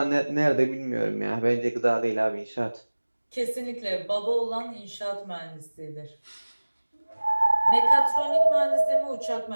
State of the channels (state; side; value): inverted; both; correlation -1.00